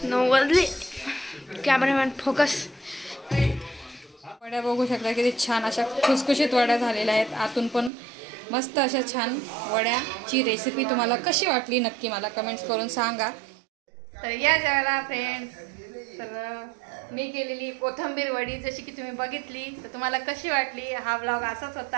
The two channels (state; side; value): drops out; left; at 7.9 s